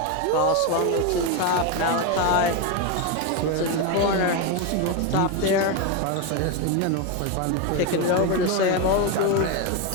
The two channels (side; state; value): both; different; correlation 0.03